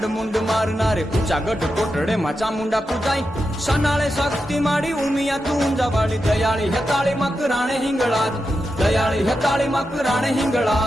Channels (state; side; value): normal; both; correlation 0.88